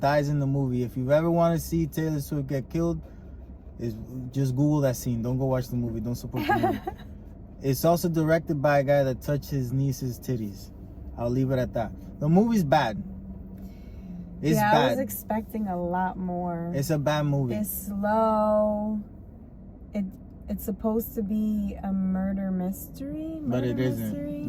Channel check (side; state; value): both; identical; correlation 1.00